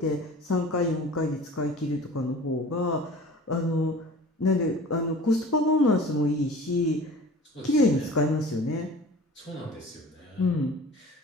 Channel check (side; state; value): both; normal; correlation 0.42